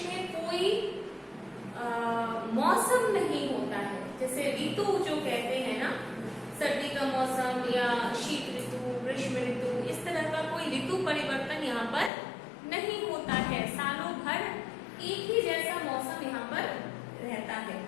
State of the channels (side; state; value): right; drops out; at 12.1 s